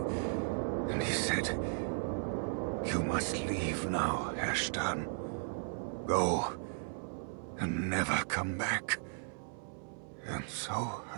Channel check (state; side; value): silent; left; 54 dB below the other